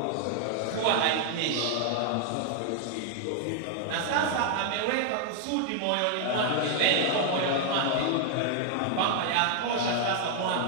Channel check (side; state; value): both; different; correlation 0.00